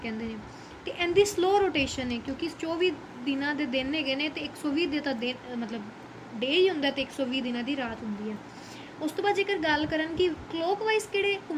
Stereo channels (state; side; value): identical; both; correlation 1.00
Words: ਕਹਿੰਦੇ ਨੇ। ਤੇ ਇਹਦੀ ਸਲੋ ਰੋਟੇਸ਼ਨ ਹੈ, ਕਿਉਂਕਿ 24 ਦਿਨਾਂ ਦੇ ਦਿਨ ਹੈਗੇ ਨੇ, ਤੇ 120 ਦੇ ਤਾਂ ਦਿਨ ਮਤਲਬ ਡੇ ਹੀ ਹੁੰਦਾ, ਤੇ 120 ਦਿਨਾਂ ਦੀ ਰਾਤ ਹੁੰਦੀ ਹੈ। ਉਸ ਤੋਂ ਬਾਅਦ ਜੇਕਰ ਗੱਲ ਕਰਨ ਕਿ ਕਲੋਕ ਵਾਈਜ਼ ਕਿਹੜੇ